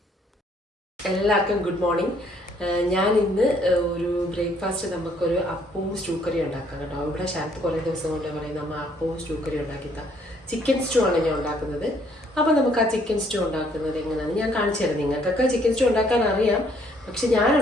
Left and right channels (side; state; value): both; normal; correlation 0.65